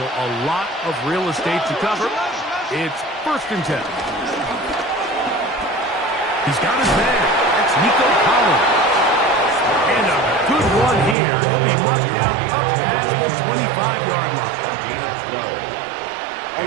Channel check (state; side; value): drops out; left; at 11.2 s